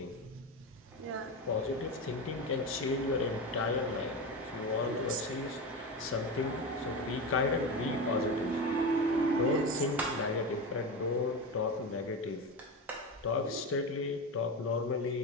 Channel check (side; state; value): both; normal; correlation 0.21